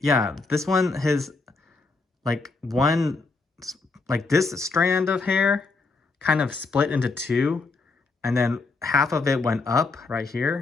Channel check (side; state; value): right; quieter; 3.9 dB